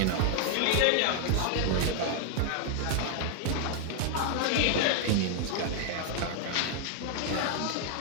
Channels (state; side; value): different; both; correlation 0.00